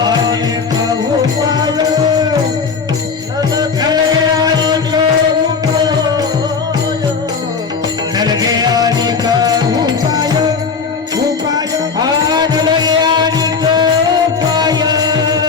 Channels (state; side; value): quieter; right; 5.3 dB